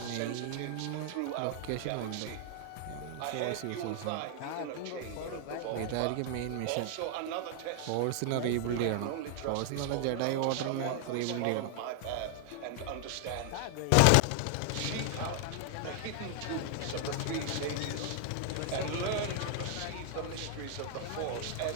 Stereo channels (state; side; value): different; both; correlation 0.00